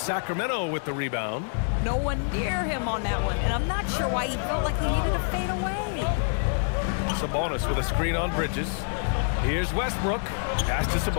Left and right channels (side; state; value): right; silent; 60 dB below the other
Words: Sacramento with the rebound. No one near him on that one, and I'm not sure why he felt like he needed to fade away. Sabonis with a screen on Bridges. Here's Westbrook. Pass to